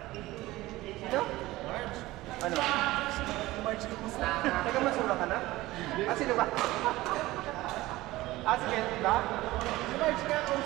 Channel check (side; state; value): left; quieter; 18.2 dB